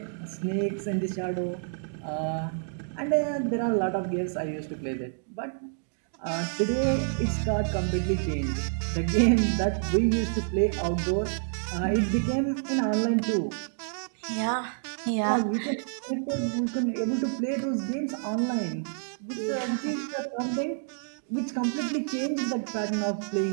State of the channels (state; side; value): silent; left; digital silence